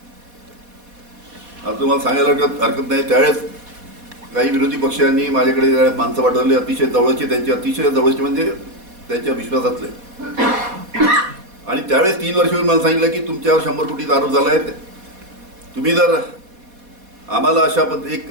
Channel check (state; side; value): late; left; 4.2 ms